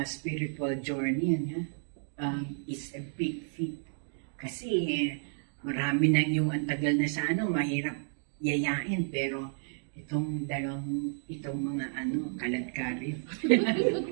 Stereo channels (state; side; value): silent; left; digital silence